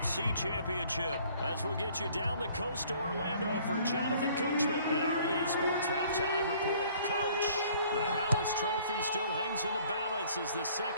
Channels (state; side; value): inverted; both; correlation -0.57